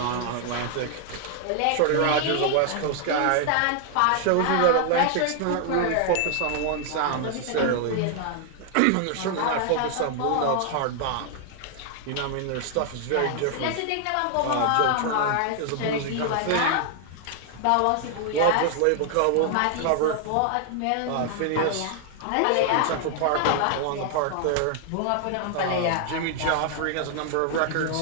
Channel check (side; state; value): both; different; correlation 0.00